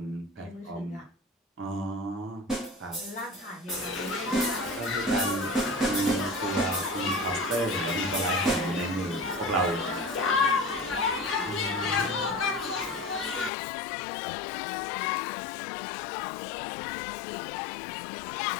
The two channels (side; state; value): right; drops out; at 13.5 s